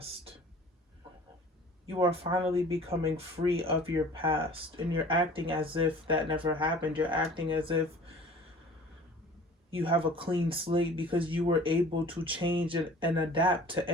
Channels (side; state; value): both; normal; correlation 0.46